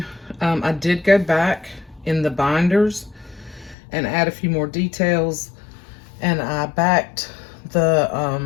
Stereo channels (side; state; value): right; drops out; at 3.8 s